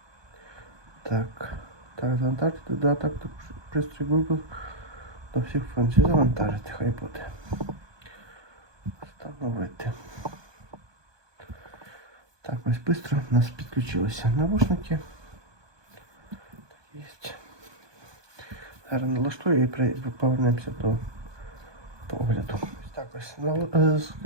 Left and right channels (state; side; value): late; left; 1.2 ms